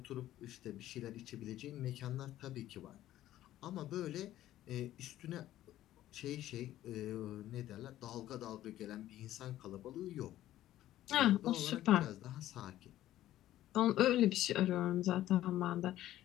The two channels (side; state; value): right; quieter; 13.7 dB